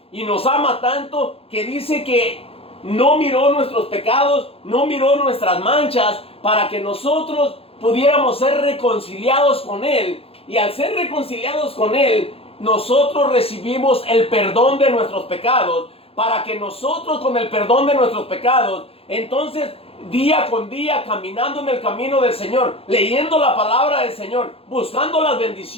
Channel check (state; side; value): late; right; 0.28 ms